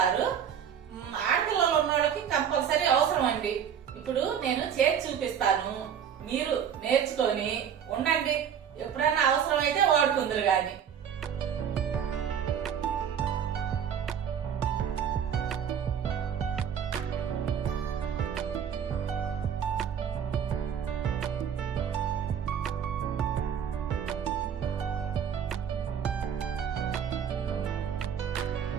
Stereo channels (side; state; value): left; quieter; 8.3 dB